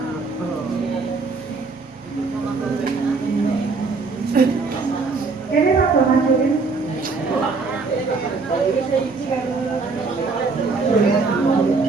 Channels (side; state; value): left; quieter; 4.2 dB